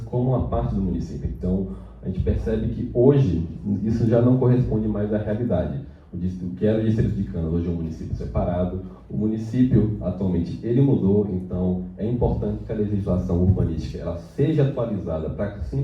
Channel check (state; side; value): identical; both; correlation 1.00